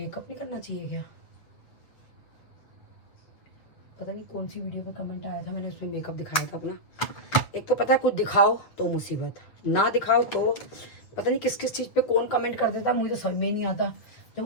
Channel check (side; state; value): right; late; 7.8 ms